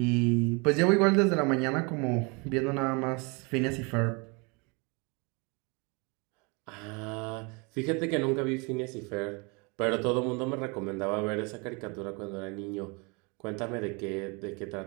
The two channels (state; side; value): quieter; left; 30.3 dB